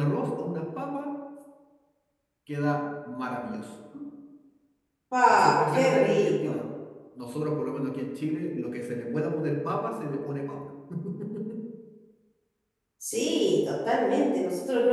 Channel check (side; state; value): both; identical; correlation 1.00